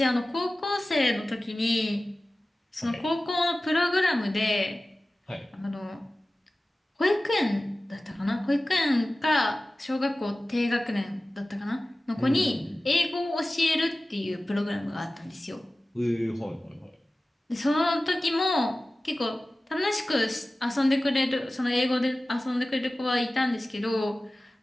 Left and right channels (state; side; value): normal; both; correlation 0.96